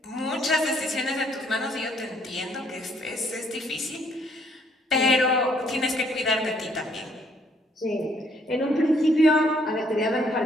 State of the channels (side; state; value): both; normal; correlation 0.66